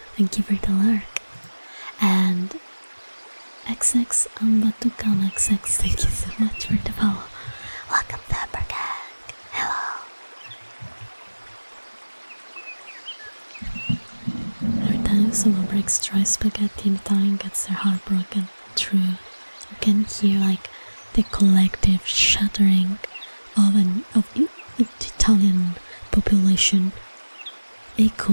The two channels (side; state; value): both; inverted; correlation -1.00